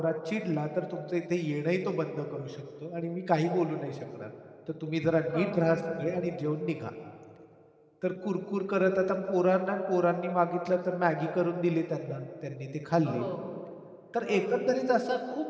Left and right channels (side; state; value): both; identical; correlation 1.00